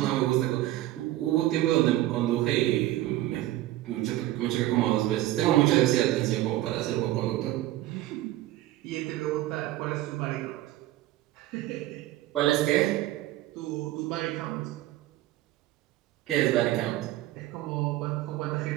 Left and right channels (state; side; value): quieter; left; 15.4 dB